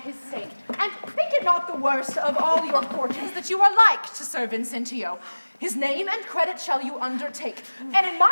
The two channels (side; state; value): both; inverted; correlation -1.00